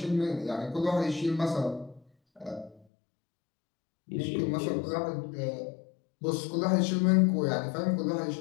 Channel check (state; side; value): drops out; right; at 2.9 s